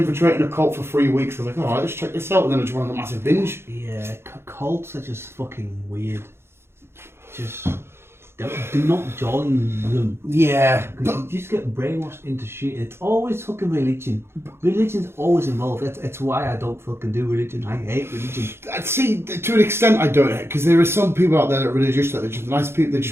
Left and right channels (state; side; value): late; left; 0.12 ms